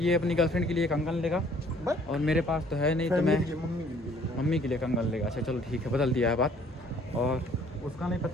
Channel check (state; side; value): normal; both; correlation 0.59